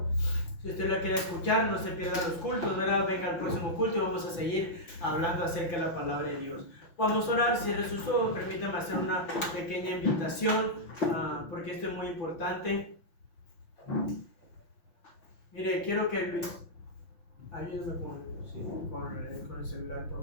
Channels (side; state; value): right; late; 5.9 ms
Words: Si usted lo quiere escuchar, no se pierda los cultos, ¿verdad? Venga al próximo culto y vamos a seguir hablando acerca de la palabra de Dios. Vamos a orar, cierre sus ojos, permítame hacer una pequeña invitación, porque esto es muy importante. Mire, quiero que ayúdame con el celular,